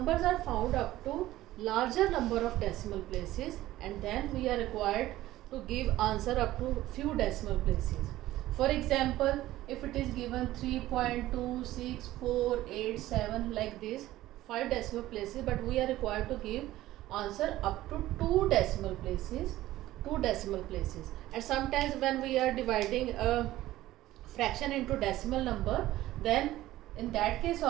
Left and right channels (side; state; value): left; quieter; 15.6 dB